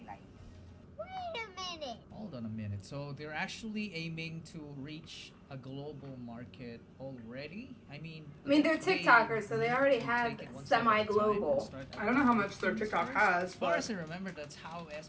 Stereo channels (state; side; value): identical; both; correlation 1.00